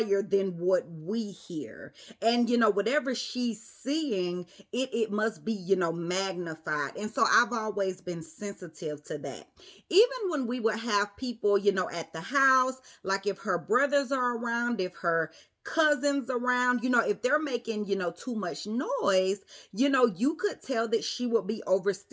than what we hear. And whatever she's seeing, it must be magnified. And so I've always been sensitive to that. Even when we would have people at the house, like if her brothers are around, if her cousins around, if they're making, too much noise, you could tell that she would be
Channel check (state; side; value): identical; both; correlation 1.00